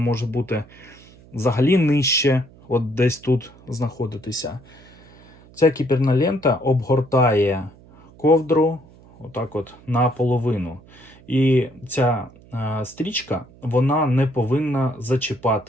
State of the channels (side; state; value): right; noise; hum, 24 dB below the sound